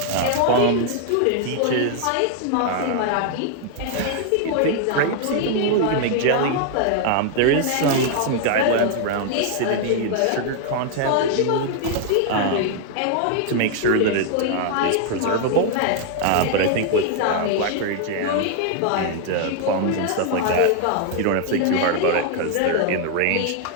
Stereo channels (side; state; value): both; different; correlation 0.00